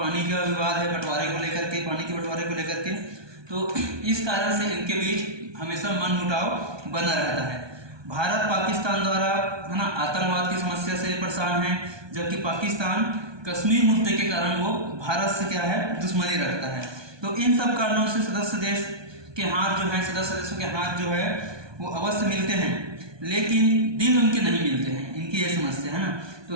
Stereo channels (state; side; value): late; left; 1.2 ms